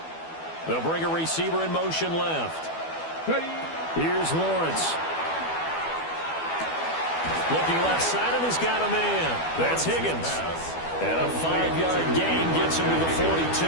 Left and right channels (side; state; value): right; late; 12 ms